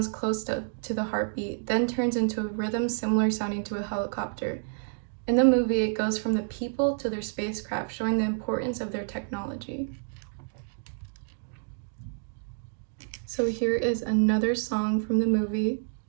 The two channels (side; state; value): left; silent; digital silence